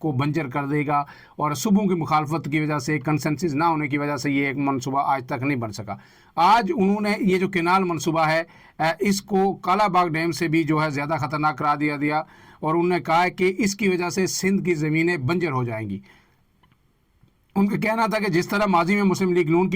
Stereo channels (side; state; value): both; identical; correlation 1.00